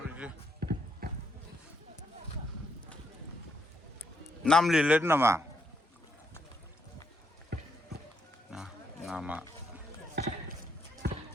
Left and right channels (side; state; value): both; normal; correlation 0.77